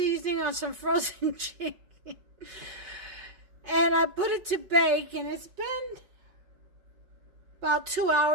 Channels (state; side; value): late; left; 5.4 ms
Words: on some frozen chicken, and I put it to bake, and it's been about 2